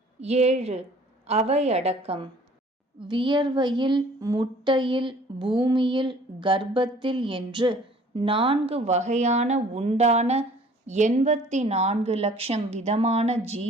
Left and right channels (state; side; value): normal; both; correlation 0.53